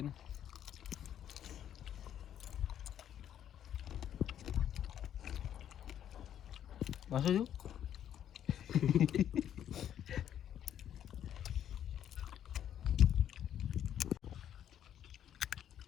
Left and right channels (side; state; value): right; quieter; 10.2 dB